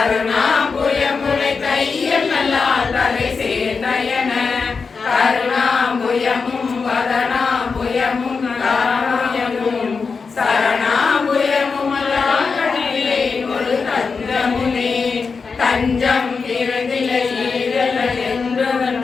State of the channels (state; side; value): quieter; right; 5.0 dB